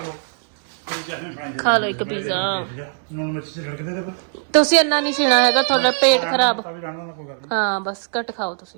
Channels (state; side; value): silent; left; digital silence